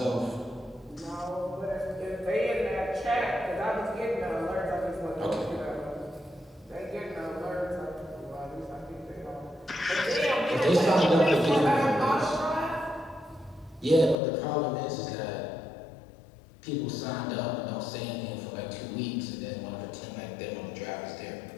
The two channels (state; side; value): drops out; right; at 14.2 s